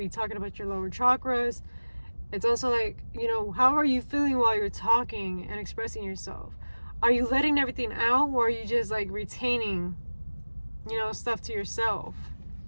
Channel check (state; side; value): inverted; both; correlation -1.00